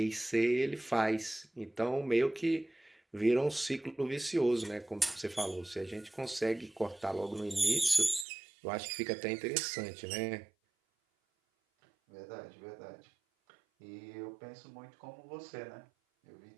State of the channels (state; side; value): drops out; left; at 8.2 s